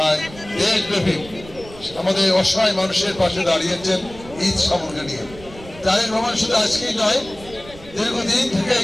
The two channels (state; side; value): noise; right; rumble, 19 dB below the sound